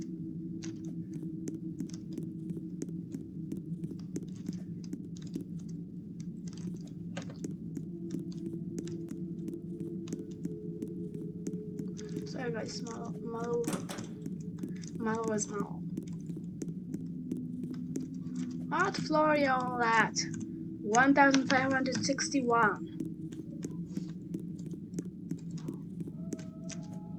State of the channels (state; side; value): identical; both; correlation 1.00